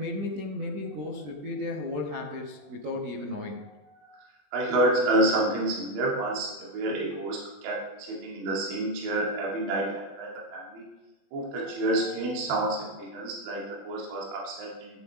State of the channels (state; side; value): late; left; 20 ms